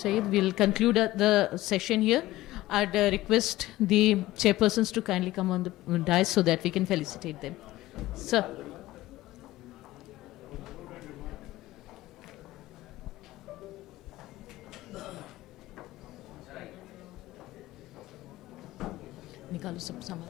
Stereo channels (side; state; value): right; quieter; 16.7 dB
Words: We'll conclude the session here. I'd request the chairpersons to kindly come on the dais so that we can felicitate them. Sir. निकालो सब सामान.